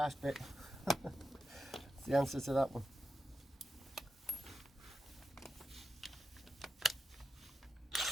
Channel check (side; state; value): both; normal; correlation 0.88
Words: bit. That's the answer to that one.